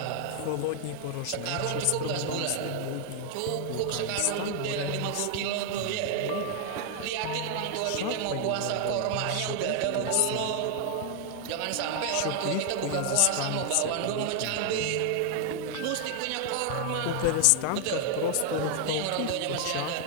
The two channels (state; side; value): different; both; correlation 0.00